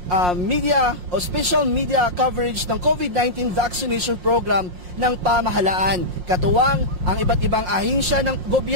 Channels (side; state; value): left; late; 5.6 ms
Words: media o special media coverage ng COVID-19 vaccination program ng pamahalaan. Katuwang ang iba't ibang ahensya ng